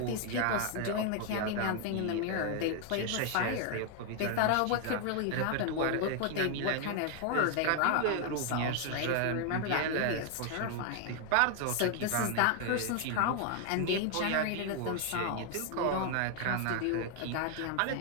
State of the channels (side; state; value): both; different; correlation 0.00